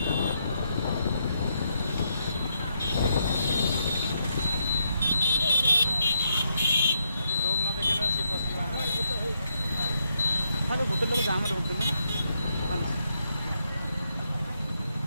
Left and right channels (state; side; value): inverted; both; correlation -0.78